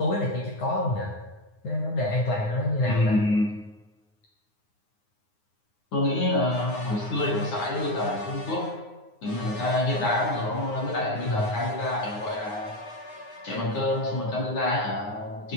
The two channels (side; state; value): right; late; 9.6 ms